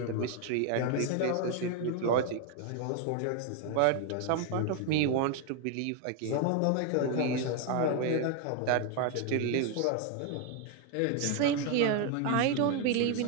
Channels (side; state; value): both; different; correlation 0.01